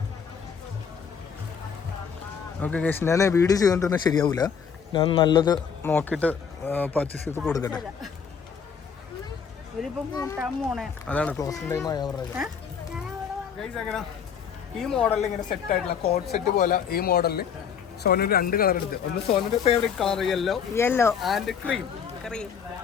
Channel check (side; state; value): right; quieter; 6.9 dB